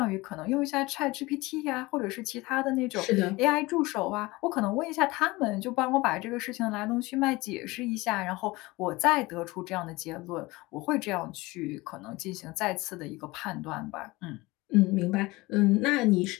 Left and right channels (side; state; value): right; quieter; 21.5 dB